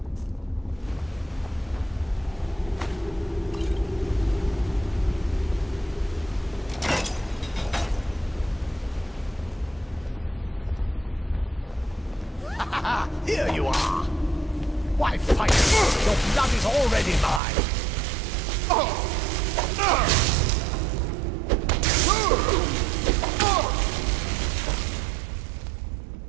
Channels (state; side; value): drops out; left; at 17.4 s